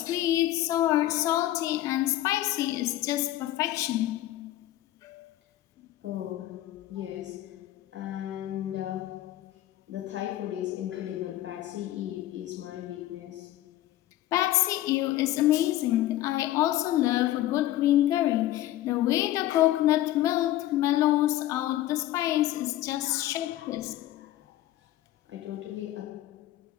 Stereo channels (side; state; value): right; quieter; 14.4 dB